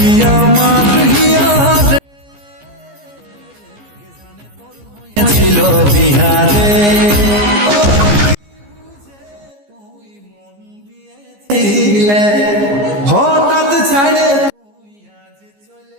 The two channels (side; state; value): left; late; 15 ms